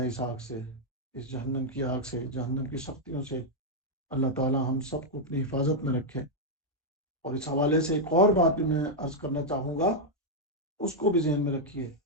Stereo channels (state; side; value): normal; both; correlation -0.03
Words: اس آگ سے، اس جہنم کی آگ سے، جہنم کی سختیوں سے۔ اللہ تعالی ہم سب کو اپنی حفاظت میں رکھے۔ اور اس حوالے سے ایک اور بات بھی میں عرض کرنا چاہوں گا، اس کو بھی ذہن میں رکھیے